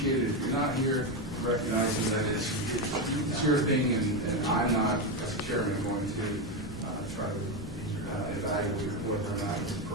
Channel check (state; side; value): normal; both; correlation 0.11